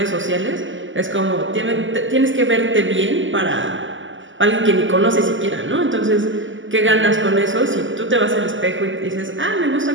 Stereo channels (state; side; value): late; left; 0.56 ms